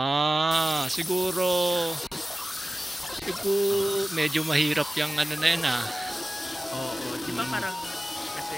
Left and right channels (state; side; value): normal; both; correlation 0.96